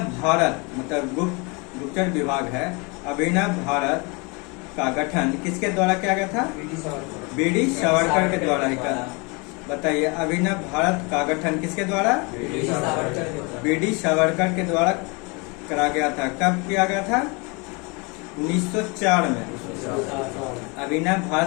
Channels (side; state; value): right; quieter; 29.4 dB